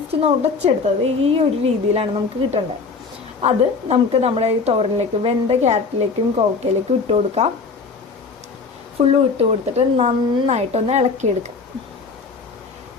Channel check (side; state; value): right; quieter; 4.6 dB